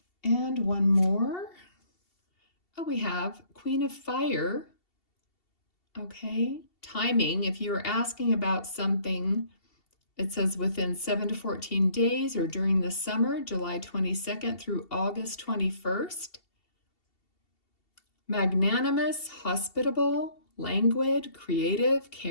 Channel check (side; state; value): right; late; 2.7 ms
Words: And one more. Oh, we have Queen of Fire. Okay, timing. If you were asking about something, it says within 7 to 14 days or during the summer, July 22nd through August 21st. Magnanimous, hospitable, languid, creative,